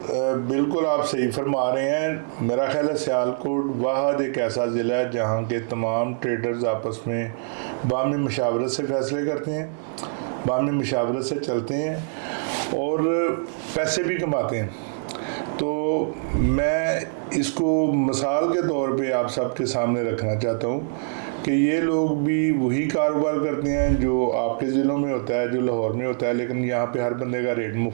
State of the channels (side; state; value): left; silent; digital silence